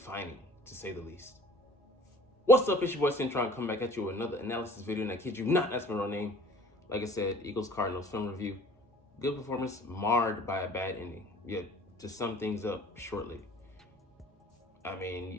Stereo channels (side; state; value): both; normal; correlation 0.49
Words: to say the least. What's up, it's your boy Centron, coming back at you with another analysis video, and I kid you not, that's my real name. Like I said, Eagles Cardinals Film Review. Good performance, marred by a bad ending. Yet, to sum things up shortly, I